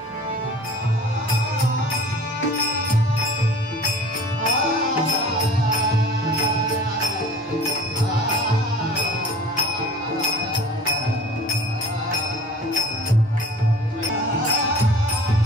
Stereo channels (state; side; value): normal; both; correlation 0.44